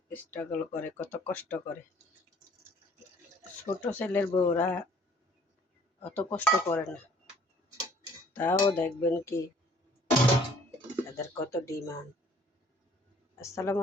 স্ট্রাগল করে, কত কষ্ট করে। ছোট ছেলের বউরা অত কষ্ট করে না, তাও দেখবেন কি তাদের কত ডিমান্ড। আসসালামু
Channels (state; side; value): normal; both; correlation 0.57